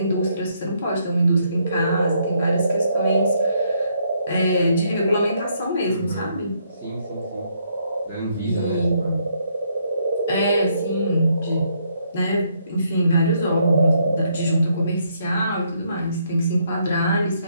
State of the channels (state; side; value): inverted; both; correlation -0.72